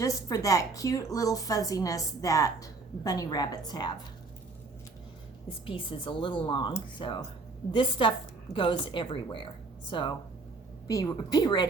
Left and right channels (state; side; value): quieter; left; 3.8 dB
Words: for that cute little fuzziness that bunny rabbits have. This piece is a little long, so this stuff goes everywhere. So be